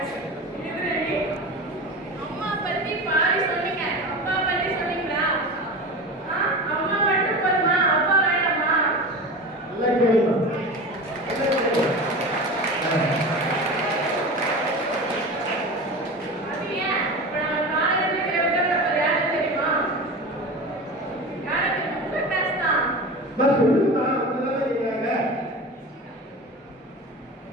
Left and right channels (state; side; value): normal; both; correlation 0.29